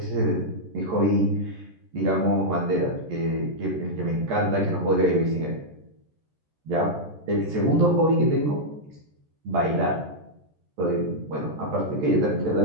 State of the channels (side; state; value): left; late; 13 ms